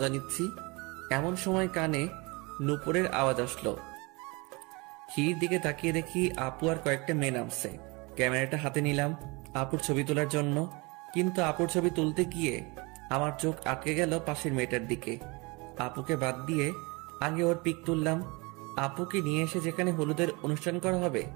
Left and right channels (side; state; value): left; quieter; 26.7 dB